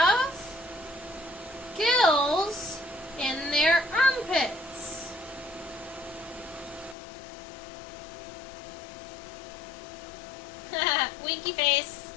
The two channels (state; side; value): drops out; right; at 7.0 s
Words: gills in their armpits. Winky face.